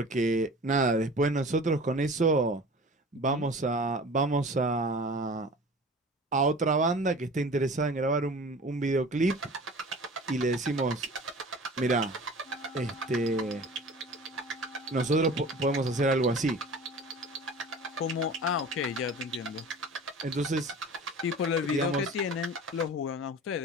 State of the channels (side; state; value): both; normal; correlation 0.40